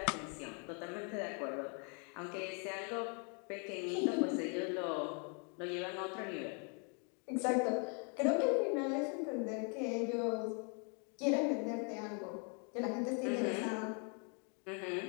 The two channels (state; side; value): quieter; right; 38.3 dB